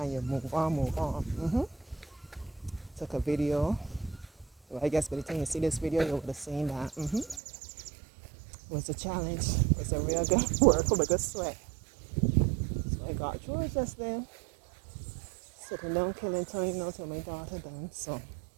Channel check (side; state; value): left; drops out; at 7.4 s